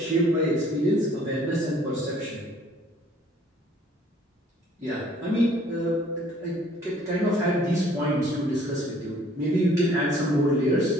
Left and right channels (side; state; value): both; normal; correlation 0.58